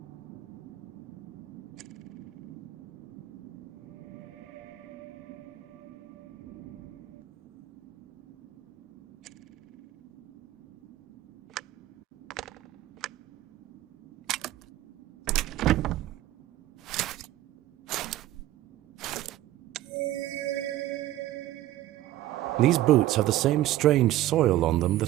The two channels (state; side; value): quieter; left; 14.6 dB